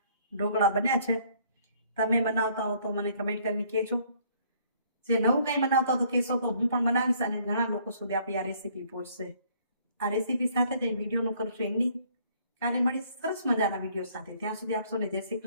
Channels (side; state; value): both; inverted; correlation -0.62